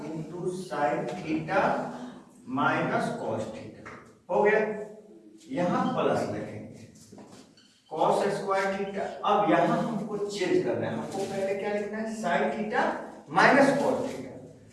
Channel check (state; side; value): identical; both; correlation 1.00